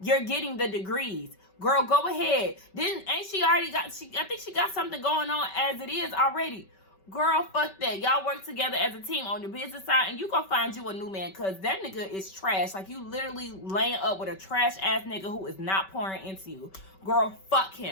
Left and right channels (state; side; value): late; right; 5.2 ms